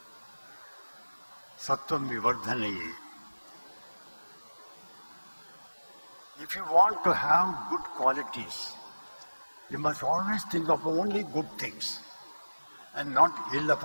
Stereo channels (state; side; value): inverted; both; correlation -1.00